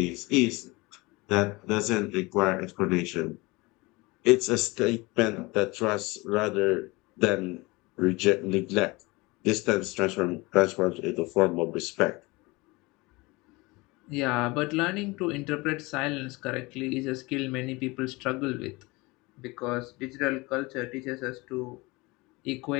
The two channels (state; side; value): quieter; right; 23.8 dB